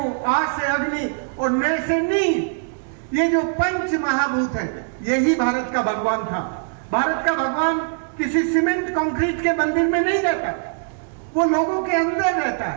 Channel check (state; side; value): silent; left; digital silence